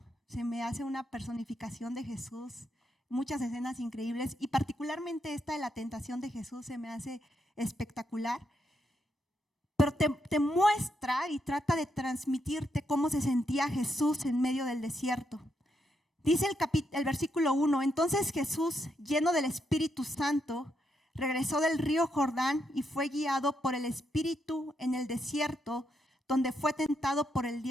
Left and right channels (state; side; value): normal; both; correlation 0.79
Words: Se me hace una personificación de Jesús, muchas escenas increíbles, y particularmente esta de la tentación de Jesús se me hace espectacular. Pero te muestra y trata de transmitirte cómo se sentía Jesús en medio del desierto. Dice el versículo 1, entonces Jesús, lleno del Espíritu Santo, regresó del río Jordán y fue guiado por el Espíritu en el desierto, donde fue tentado por el